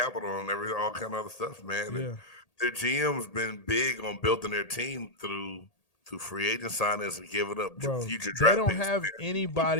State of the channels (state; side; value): late; right; 1.8 ms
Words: and all kind of other stuff, man. Yeah. Their GM's been big on building their team through free agent signings and giving up Bro, future they draft don't picks. have